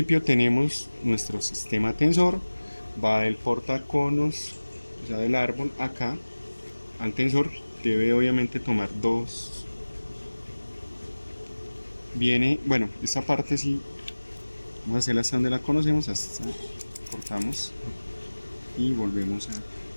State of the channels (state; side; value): inverted; both; correlation -1.00